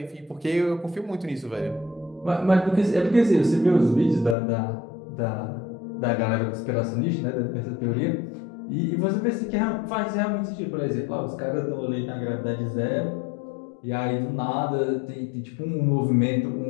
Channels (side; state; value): right; drops out; at 4.4 s